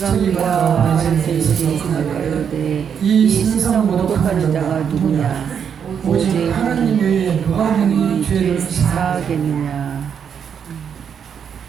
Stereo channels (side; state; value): left; quieter; 7.6 dB